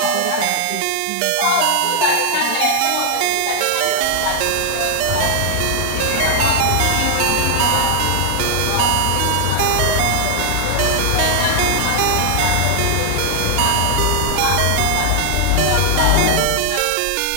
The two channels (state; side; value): different; both; correlation 0.00